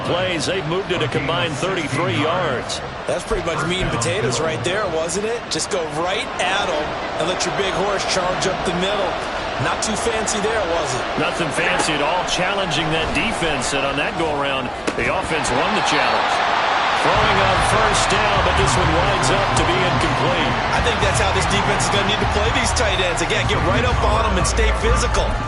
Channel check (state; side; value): identical; both; correlation 1.00